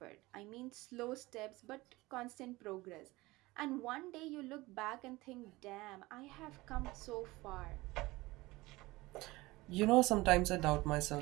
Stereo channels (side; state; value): left; quieter; 20.6 dB